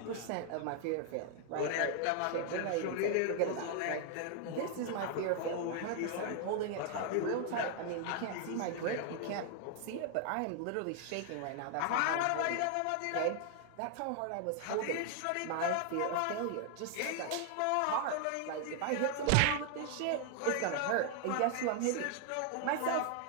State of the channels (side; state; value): both; different; correlation 0.00